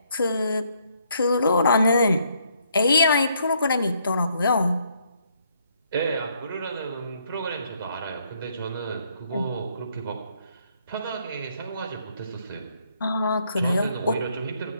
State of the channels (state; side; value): inverted; both; correlation -0.70